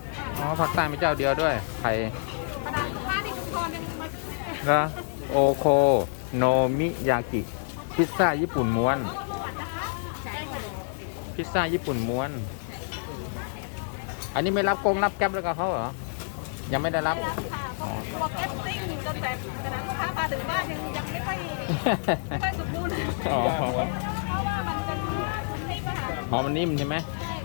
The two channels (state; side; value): silent; right; digital silence